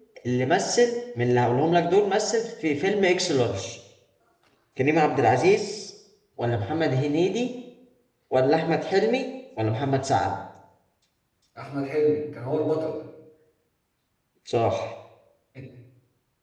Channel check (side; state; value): both; identical; correlation 1.00